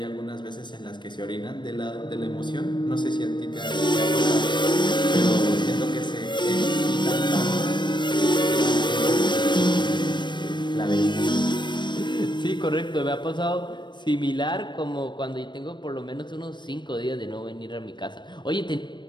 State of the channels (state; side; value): late; right; 0.22 ms